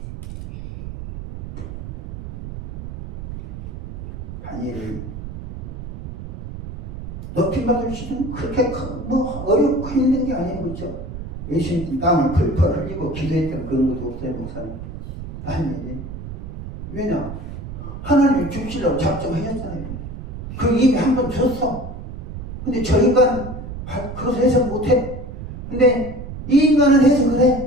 다니엘이 높임받을 수는 그렇게 어렵고 힘든 게 아니에요. 그렇죠? 예수님 땀을 펄펄 흘리고 기도했던 그런 것도 없어요. 목사님. 다니엘이. 왜냐? 하나님이 죽시라고 작정하셨잖아요. 그 이미 한 번 줬어. 근데 저 인간 그것을 해석 못해. 근데 이 인간은 해석을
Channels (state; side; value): noise; right; rumble, 9 dB below the sound